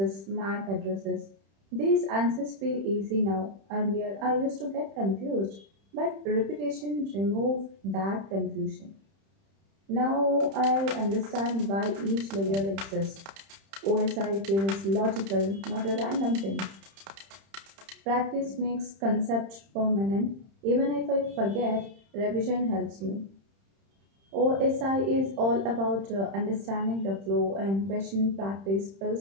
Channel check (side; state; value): left; late; 31 ms